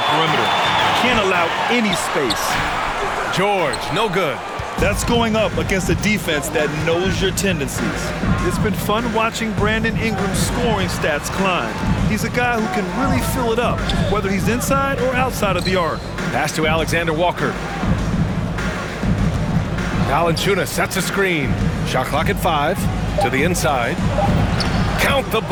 perimeter. Can't allow any space. George, no good. That's going up against a defense that knows your tendencies. It's been fun watching Brandon Ingram's scoring stats climb. He's a guy who can really fill it up, whether he's inside or outside of the arc. Pass to Alexander Walker. Valanciunas sets a screen. Shot clock at 5. To the inside. Count the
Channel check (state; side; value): identical; both; correlation 1.00